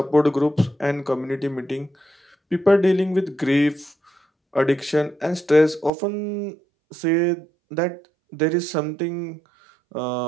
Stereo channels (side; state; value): left; drops out; at 5.9 s